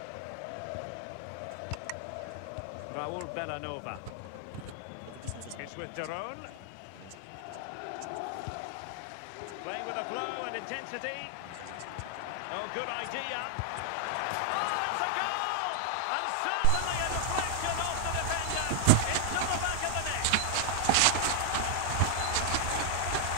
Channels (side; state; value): both; different; correlation 0.00